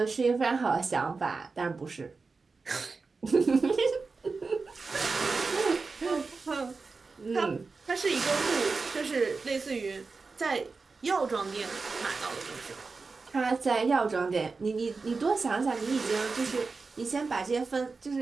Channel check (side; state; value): left; quieter; 4.3 dB